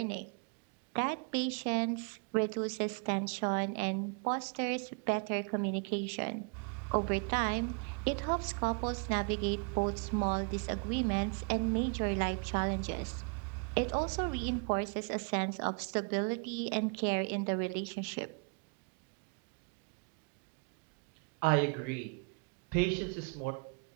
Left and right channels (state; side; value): quieter; left; 37.2 dB